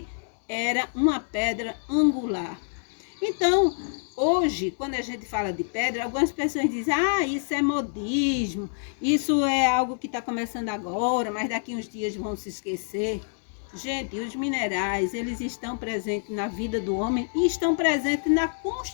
era uma pedra angular. Então, hoje, quando a gente fala de pedra, algumas pessoas dizem, isso é modismo, isso é algo que está começando agora, mas daqui uns dias vão se esquecer. Gente, os minerais, eles estão presentes na vida do homem e estão presentes na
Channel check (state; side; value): silent; right; digital silence